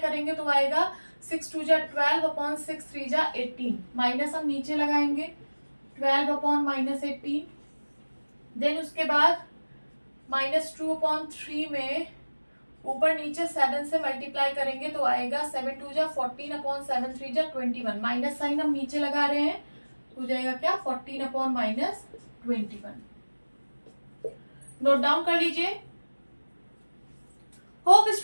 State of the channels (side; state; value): both; inverted; correlation -1.00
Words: तो आएगा 6 × 2 = 12, 6 × 3 = 18। माइनस हम नीचे लगाएंगे 12/-18। देन उसके बाद -2/3 में ऊपर नीचे 7 से मल्टीप्लाई करेंगे तो आएगा 7 × 2 = 14, 7 × 3 = 21। माइनस साइन हम नीचे लगा रहे हैं, हो जाएगा क्या 14/-21। नोट डाउन कर लीजिए। होप